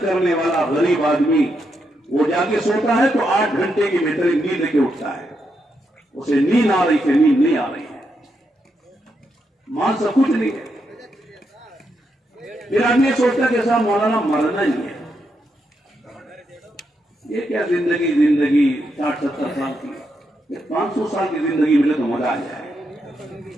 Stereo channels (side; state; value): both; normal; correlation 0.82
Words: کرنے والا غریب آدمی وہ جا کے سوتا ہے تو 8 گھنٹے کی بہترین نیند لے کے اٹھتا ہے. اسے نیند آ رہی تھی, نیند نہیں آ رہی ہے, مال سب کچھ نہیں ہے. پھر آدمی سوچتا کہ صاحب مولانا مرنا ہی ہے, یہ کیا زندگی 60-70 سال کی, 500 سال کی زندگی ملے تو مزہ آ جائے.